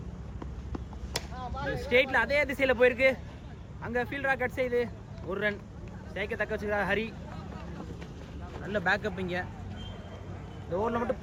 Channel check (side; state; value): both; identical; correlation 1.00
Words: ஸ்டேட்ல அதே திசையில போயிருக்கு. அங்க ஃபீல்டரா கட் செய்து ஒரு ரன். ஸ்ட்ரைக்கை தக்க வச்சுக்கிறார் ஹரி. நல்ல பேக்கப். இங்க இந்த ஓவரில் மட்டும்